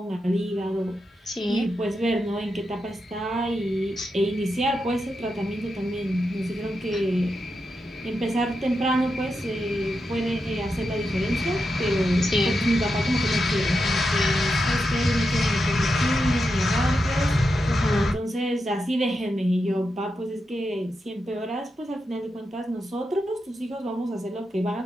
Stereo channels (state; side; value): normal; both; correlation 0.87